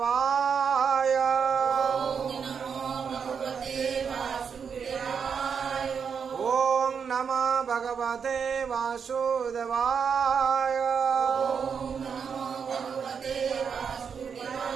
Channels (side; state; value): left; quieter; 6.6 dB